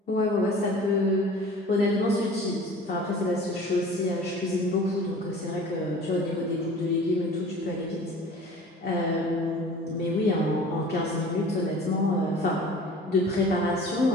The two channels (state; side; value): normal; both; correlation 0.43